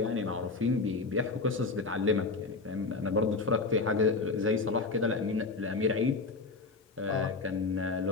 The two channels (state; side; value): quieter; right; 3.9 dB